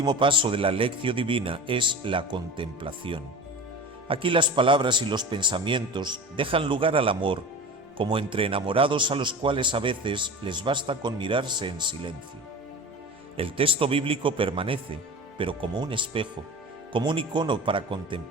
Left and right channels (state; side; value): normal; both; correlation 0.33